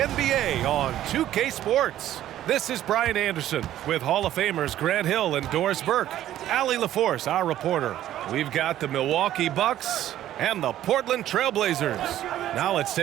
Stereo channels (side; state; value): left; quieter; 12.6 dB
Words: on 2K Sports. This is Brian Anderson with Hall of Famers Grant Hill and Doris Burke. Allie LaForce, our reporter. We've got the Milwaukee Bucks and the Portland Trailblazers. Now let's